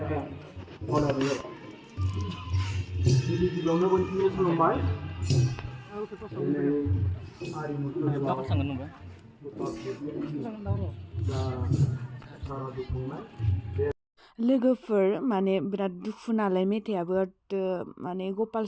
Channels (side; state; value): both; identical; correlation 1.00